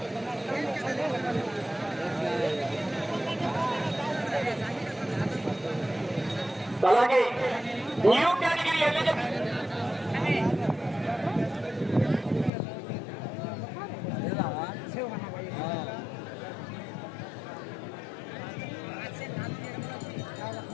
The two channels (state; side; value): drops out; right; at 12.5 s